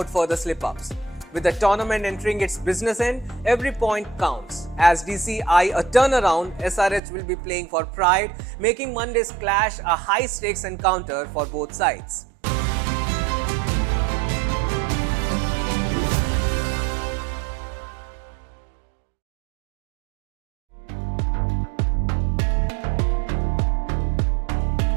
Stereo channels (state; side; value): drops out; left; at 7.0 s